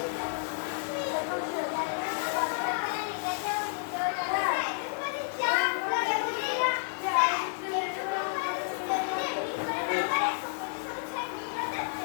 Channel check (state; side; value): silent; right; digital silence